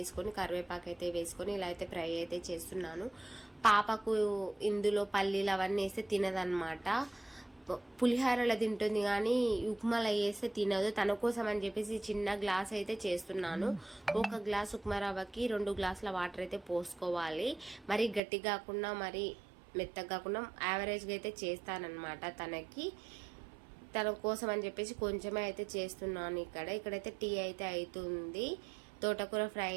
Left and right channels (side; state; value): left; drops out; at 18.2 s